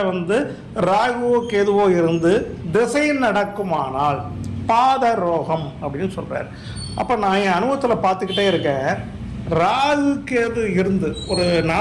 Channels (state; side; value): identical; both; correlation 1.00